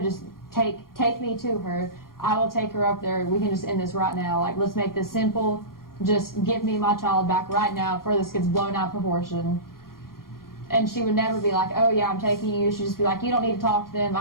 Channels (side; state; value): right; late; 0.92 ms